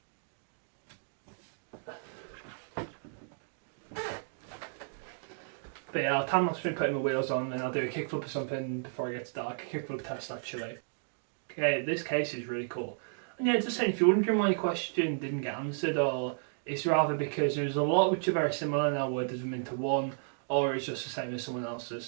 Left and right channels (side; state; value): left; silent; digital silence